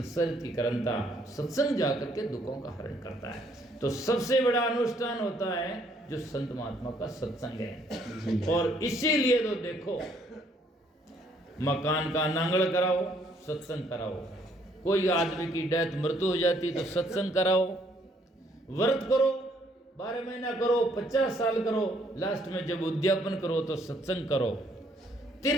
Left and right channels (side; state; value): both; normal; correlation 0.66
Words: की करंता, सत्संग जाकर के दुखों का हरण करता है। तो सबसे बड़ा अनुष्ठान होता है जो संत महात्मा का सत्संग है। और इसीलिए तो देखो, मकान का नांगड़ कराओ, सत्संग कराओ। कोई आदमी की डेथ मृत्यु हो जाती तो सत्संग कराओ। व्रत करो, 12 महीना करो, 50 साल करो, लास्ट में जब उद्यापन करो तो सत्संग करो।